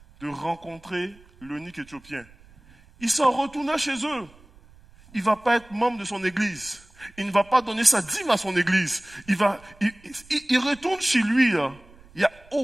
de rencontrer l'eunuque éthiopien. Il s'en retourna chez eux. Il ne va pas être membre de son église. Il ne va pas donner sa dîme à son église. Il retourne chez lui. Là. Il n'y a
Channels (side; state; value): right; noise; rumble, 25 dB below the sound